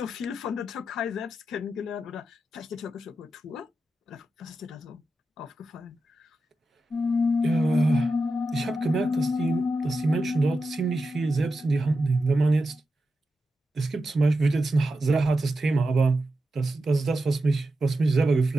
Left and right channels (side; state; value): both; normal; correlation 0.90